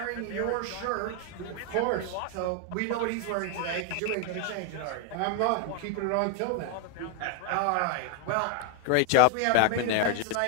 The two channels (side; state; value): both; different; correlation 0.01